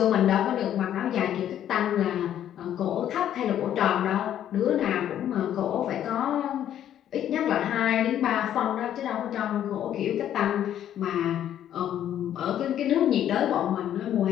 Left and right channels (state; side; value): quieter; right; 10.8 dB